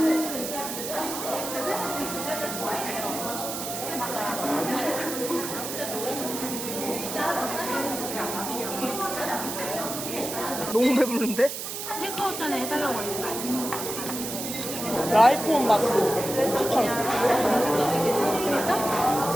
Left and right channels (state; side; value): noise; right; hiss, 6 dB below the sound